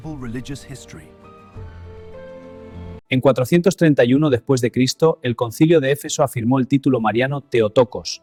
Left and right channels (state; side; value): identical; both; correlation 1.00